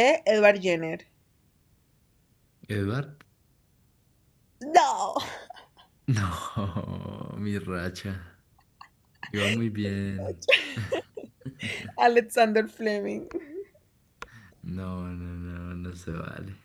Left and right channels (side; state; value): both; identical; correlation 1.00